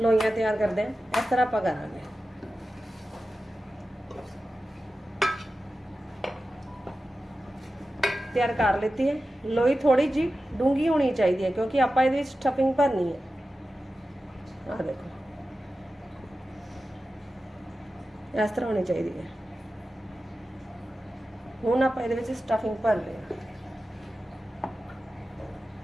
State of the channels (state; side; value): normal; both; correlation 0.93